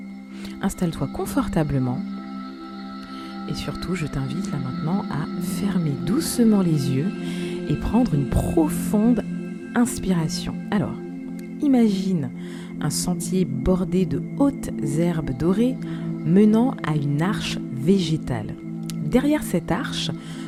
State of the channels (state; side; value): identical; both; correlation 1.00